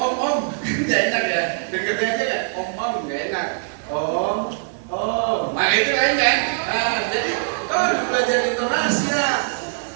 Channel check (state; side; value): silent; left; digital silence